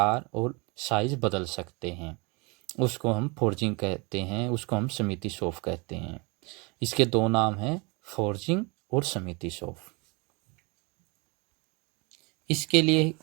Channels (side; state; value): left; quieter; 28.9 dB